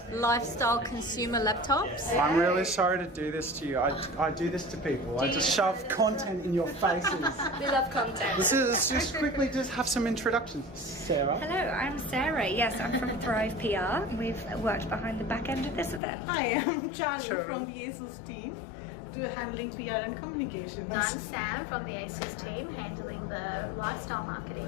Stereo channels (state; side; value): drops out; right; at 16.0 s